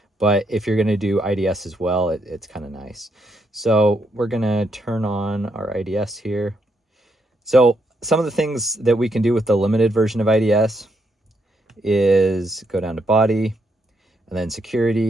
but if you're going to do IDS as well, it's kind of nice. So we're going to turn on our IDS here. So some of the things that we can do with the limited version of IDS is go down to body, and then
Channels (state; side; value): normal; both; correlation 0.77